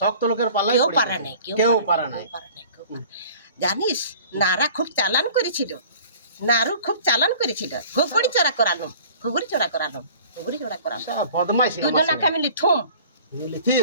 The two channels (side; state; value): both; inverted; correlation -0.47